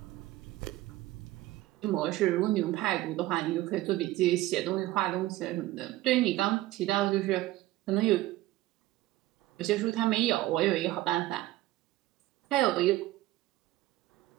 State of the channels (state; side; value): quieter; left; 16.5 dB